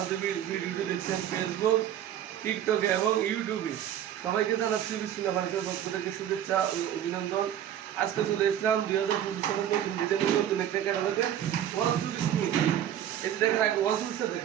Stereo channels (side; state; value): left; quieter; 10.7 dB